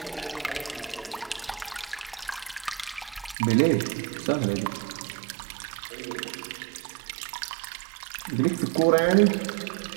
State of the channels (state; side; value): drops out; left; at 3.4 s